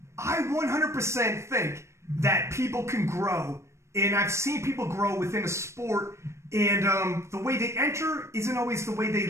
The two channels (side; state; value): left; late; 0.13 ms